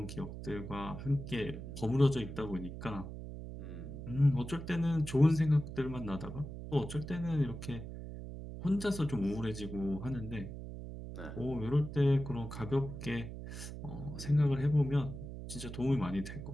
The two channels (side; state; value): right; noise; hum, 9 dB below the sound